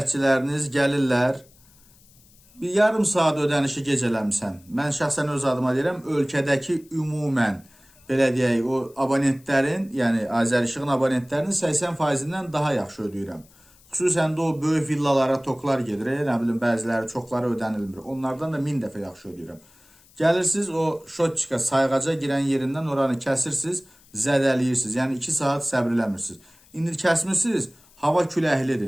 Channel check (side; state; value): left; noise; hiss, 28 dB below the sound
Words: gəlirlər, bir yarım saat ödənişi gecələmsən. Mən şəxsən öz adıma deyirəm, ölkədəki ümumən, belə deyək, o abonentlərin, yəni Azər İşığın abonentlərinin 80%-dən daha yaxşı ödəyirəm. Xüsusən də o böyük villalara toklar gedir, nə bilim, bəziləri çoxları ödənilmir. Onlardan da 1000 dəfə yaxşı ödəyirəm. Gəlirsiniz, o şotçika sayğaca girən yerindən oranı kəsirsiniz, zədəliyirsiniz. Yəni 2 saat səbr eləmirsiniz. İndi kəsmirsiniz, hava